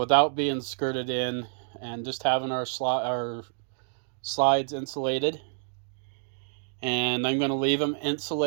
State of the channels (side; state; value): left; silent; digital silence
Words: being skirted in and just having our slides insulated, and I'm going to leave them